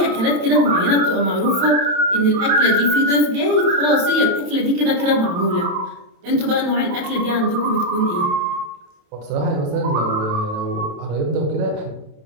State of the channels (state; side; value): late; left; 27 ms